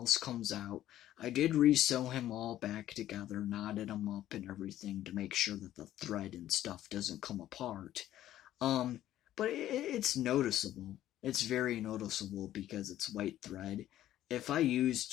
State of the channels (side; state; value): right; quieter; 13.0 dB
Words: comes out, I did resew him all back together, knotted him up and everything to make sure that the thread and stuff doesn't come apart. Um, but it's noticeable. It's very noticeable because it's white thread. If I